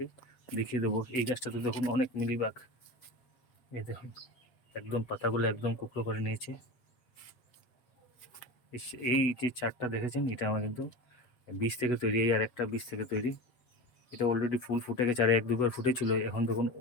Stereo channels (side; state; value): right; late; 8.1 ms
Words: দেখিয়ে দেবো। এই গাছটাতে দেখুন অনেক মিলিবাগ, এই দেখুন একদম পাতাগুলো একদম কুকড়ো করে নিয়েছে। এই যে চারটা দেখেছেন, এটা আমার কিন্তু বীজ থেকে তৈরি। এই আর একটা বীজ থেকে তৈরি। এটা অলরেডি ফুল ফুটে গেছে, আর 1-2 বার ফুটেছিল। এখন দেখুন